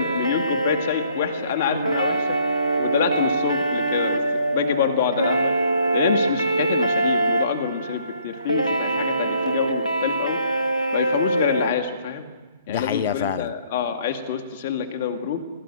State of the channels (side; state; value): both; inverted; correlation -0.64